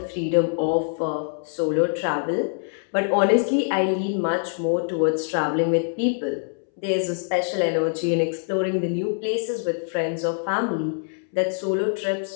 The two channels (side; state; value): right; silent; 62 dB below the other